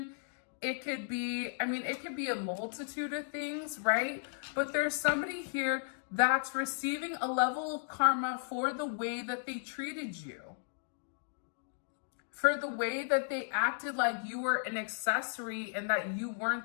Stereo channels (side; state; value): right; silent; digital silence